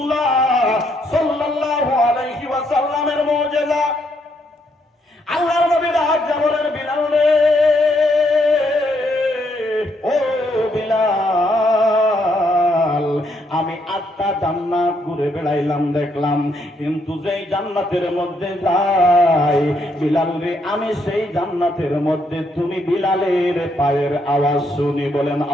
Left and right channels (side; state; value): both; normal; correlation 0.74